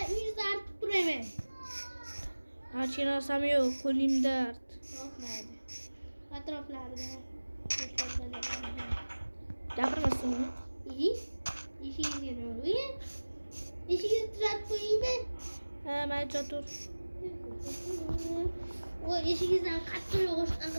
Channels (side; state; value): both; inverted; correlation -1.00